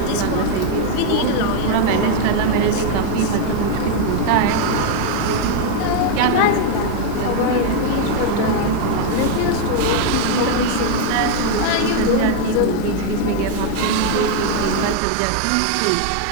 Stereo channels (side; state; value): both; different; correlation 0.01